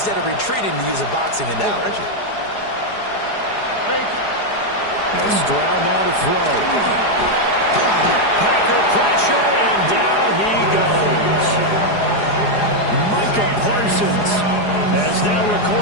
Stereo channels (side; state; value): right; late; 4.8 ms